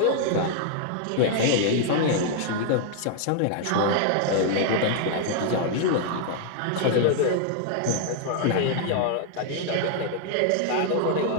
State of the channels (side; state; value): both; different; correlation 0.00